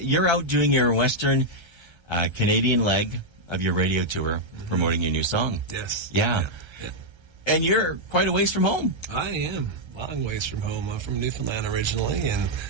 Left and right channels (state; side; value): late; left; 1.3 ms